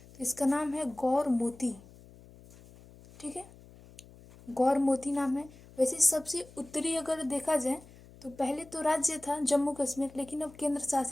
तो इसका नाम है गौर मोती। ठीक है, गौर मोती नाम है। वैसे सबसे उत्तरी अगर देखा जाए तो पहले तो राज्य था जम्मू कश्मीर, लेकिन अब केंद्र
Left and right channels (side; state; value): left; noise; hum, 22 dB below the sound